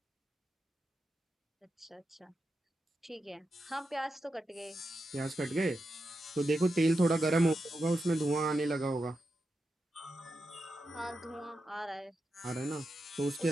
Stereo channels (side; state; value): both; normal; correlation 0.88